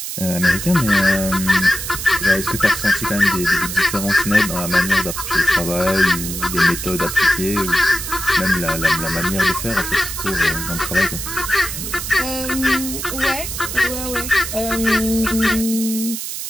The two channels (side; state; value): right; noise; hiss, 6 dB below the sound